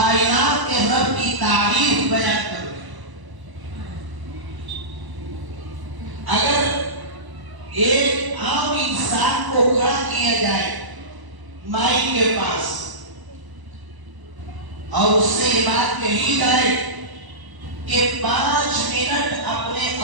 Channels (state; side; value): late; left; 1.0 ms